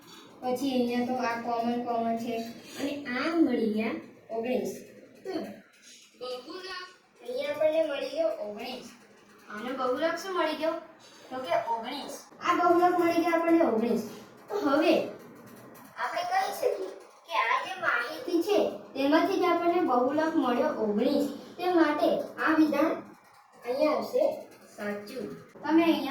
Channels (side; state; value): both; identical; correlation 1.00